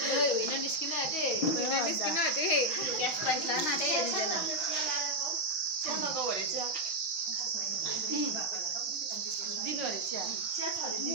होइन निस्किन आँटे निस्किन आँटे ग्यास प्राइस लान आँटे दिँदैन चियामाको भरे चिया दिनु अरे चिया चिया छ अरे दिनु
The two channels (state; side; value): late; right; 5.9 ms